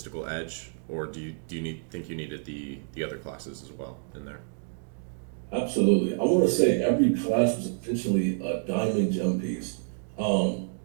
edge, or do you think you needed the other classes as well in there? Absolutely. I want to say every class was essentially a diamond gem piece. Um,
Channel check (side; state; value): left; silent; 59 dB below the other